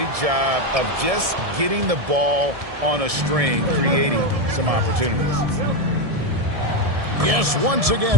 job of just getting the ball on a string, creating some opportunities. Yes, once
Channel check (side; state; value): left; late; 1.7 ms